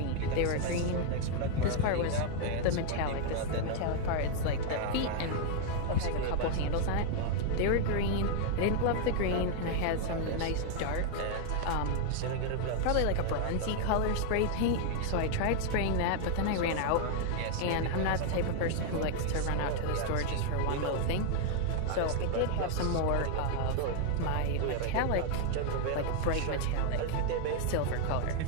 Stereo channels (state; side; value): different; both; correlation 0.00